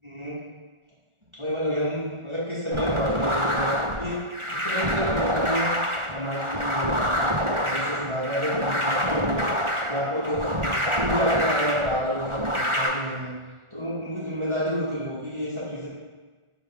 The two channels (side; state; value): left; late; 1.4 ms